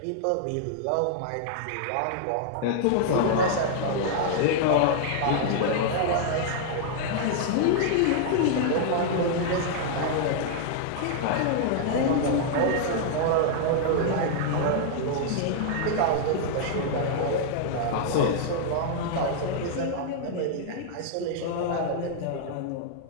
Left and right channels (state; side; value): different; both; correlation -0.01